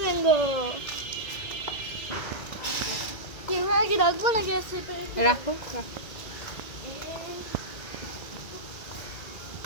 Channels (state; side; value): late; right; 2.0 ms